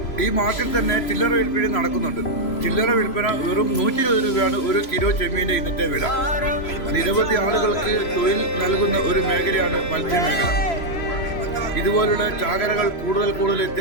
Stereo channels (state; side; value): late; right; 3.0 ms